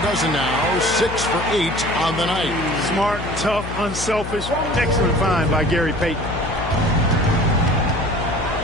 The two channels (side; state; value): left; noise; hum, 8 dB below the sound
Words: now. 6 for 8 on the night. Smart, tough, unselfish. Excellent find by Gary Payton.